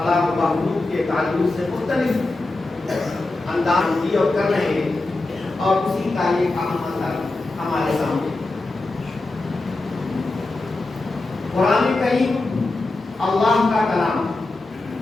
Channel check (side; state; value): right; quieter; 3.1 dB